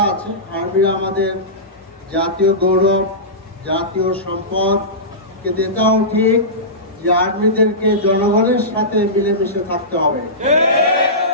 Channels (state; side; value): normal; both; correlation -0.18